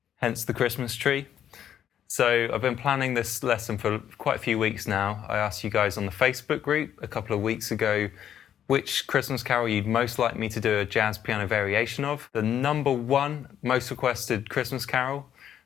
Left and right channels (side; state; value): right; quieter; 9.9 dB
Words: hence the Christmas tree. So I've been planning this lesson for quite a few weeks now. I asked you guys on the Facebook group a couple of weeks ago which Christmas carol you'd most like me to do a jazz piano variation of. The number one most requested Christmas carol